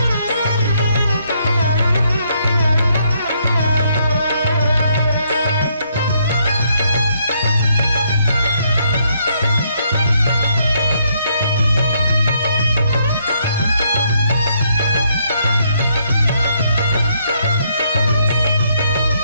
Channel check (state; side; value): inverted; both; correlation -0.72